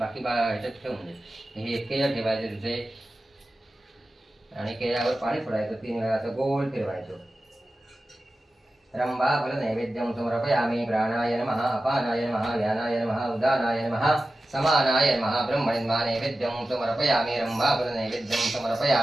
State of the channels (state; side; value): normal; both; correlation 0.94